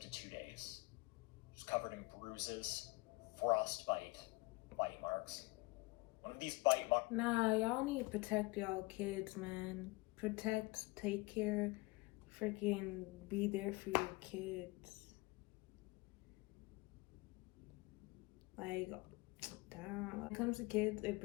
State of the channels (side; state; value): right; quieter; 23.9 dB